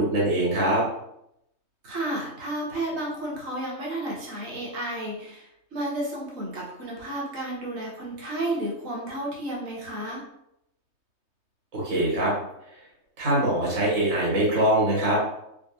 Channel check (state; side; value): late; left; 3.2 ms